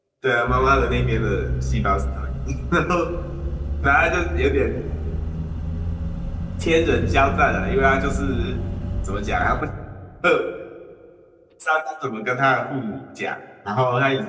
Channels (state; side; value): identical; both; correlation 1.00